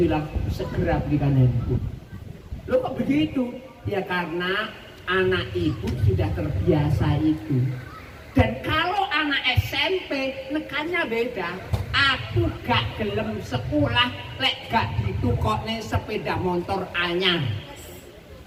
segera belikan handphone. Loh kok begitu? Ya karena anak ibu sudah terbiasa itu. Dan kalau anak SMP nekannya beda. Aku gak gelem sekolah lek gak ditukokne sepeda motor anyar.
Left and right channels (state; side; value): identical; both; correlation 1.00